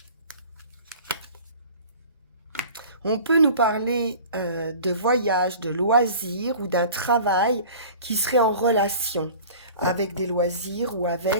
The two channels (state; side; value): inverted; both; correlation -0.42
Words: On peut nous parler de voyage, de loisirs ou d'un travail qui serait en relation avec des loisirs ou